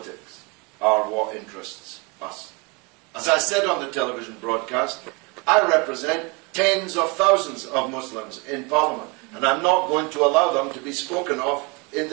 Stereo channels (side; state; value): left; quieter; 29.6 dB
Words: are what interests us. As I said on the television broadcast, I represent tens of thousands of Muslims in Parliament, and I'm not going to allow them to be spoken of in